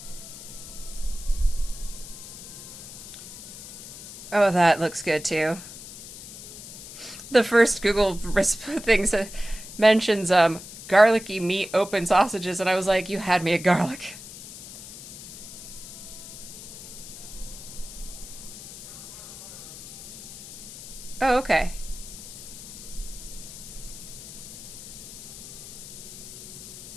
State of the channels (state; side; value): noise; left; hiss, 13 dB below the sound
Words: Oh, that looks good too. The first Google thing mentions garlicky meat open sausages, and I was like, you had me at garlic. Oh, okay.